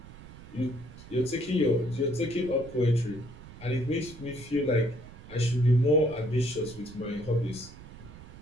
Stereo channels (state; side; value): noise; right; rumble, 17 dB below the sound